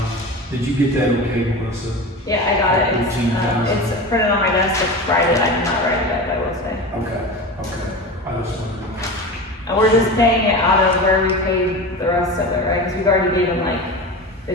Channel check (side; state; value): both; normal; correlation 0.29